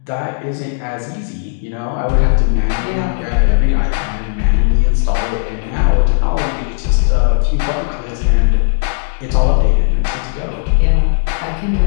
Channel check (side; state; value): right; silent; digital silence